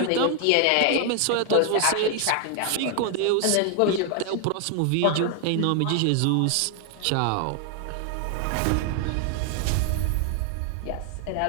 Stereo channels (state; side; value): different; both; correlation 0.00